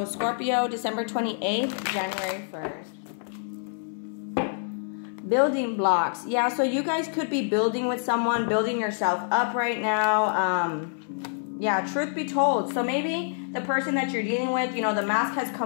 Scorpio, December 28th, January 1st. Building blocks. Yeah, so you guys could be building with someone, building yourself up right now. Yeah, truth be told. So maybe the person that you're dealing with, you know, the mask has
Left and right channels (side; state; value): right; silent; 60 dB below the other